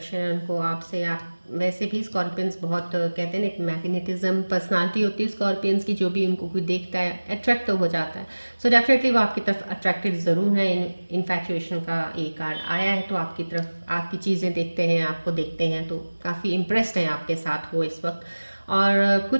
है उनको आपसे। आप वैसे भी स्कॉर्पियंस बहुत कहते हैं ना, एक मैग्नेटिज्म पर्सनालिटी होती है स्कॉर्पियंस की, जो भी उनको कोई देखता है अट्रैक्ट तो हो जाता है। सो डेफिनेटली वो आपकी तरफ अट्रैक्टेड ज़रूर है। इन्फैचुएशन का एक कार्ड आया है, तो आपकी तरफ आपकी चीज़ें देखते हैं, आपको देखते हैं तो काफ़ी इम्प्रेस्ड हैं आपके साथ वो इस वक्त। और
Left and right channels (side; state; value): both; inverted; correlation -1.00